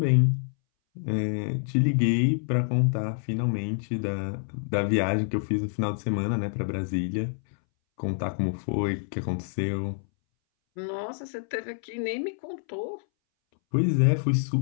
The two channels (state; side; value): silent; right; 60 dB below the other